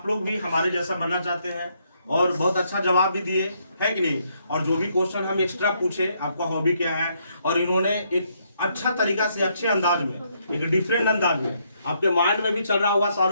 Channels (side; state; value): both; inverted; correlation -0.73